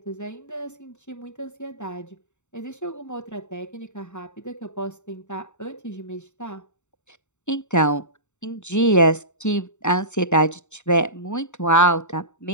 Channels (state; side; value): late; right; 0.84 ms